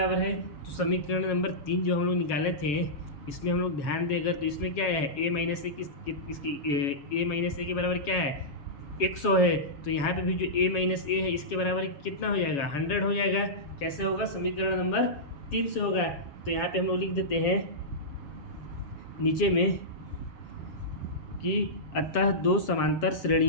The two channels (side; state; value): right; late; 7.2 ms